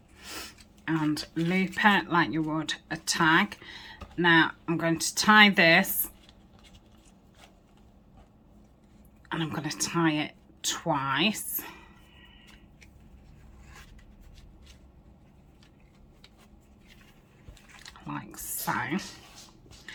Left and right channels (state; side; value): identical; both; correlation 1.00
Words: and loop it like you would a tag. Now I'm going to tie this, and I'm going to tie it twice. So,